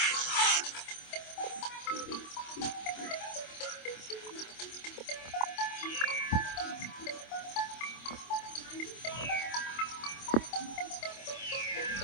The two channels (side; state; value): right; late; 25 ms